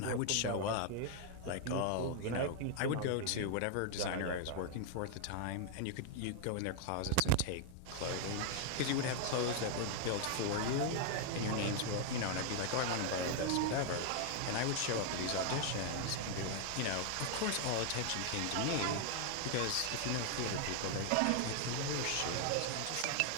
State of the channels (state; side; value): different; both; correlation 0.00